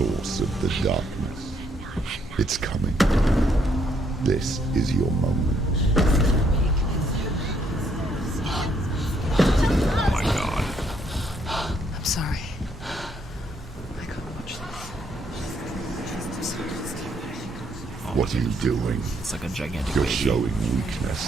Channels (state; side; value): normal; both; correlation 0.71